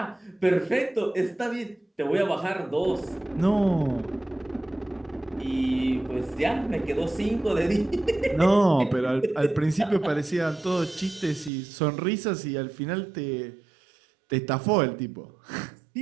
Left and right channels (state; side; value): drops out; left; at 11.5 s